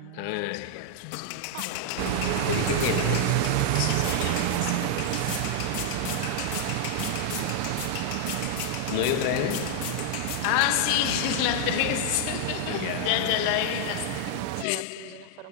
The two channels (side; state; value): both; different; correlation 0.00